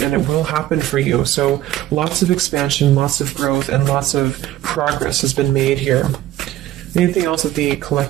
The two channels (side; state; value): left; quieter; 13.8 dB